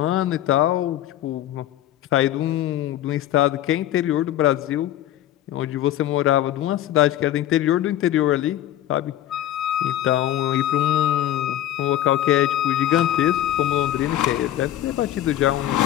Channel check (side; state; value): right; quieter; 12.7 dB